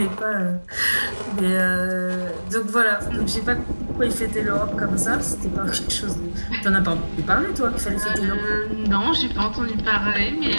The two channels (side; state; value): both; inverted; correlation -1.00